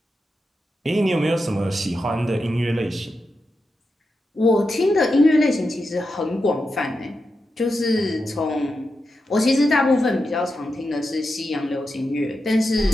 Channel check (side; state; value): both; normal; correlation 0.88